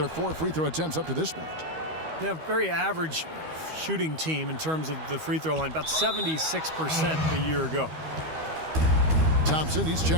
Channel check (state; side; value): late; left; 13 ms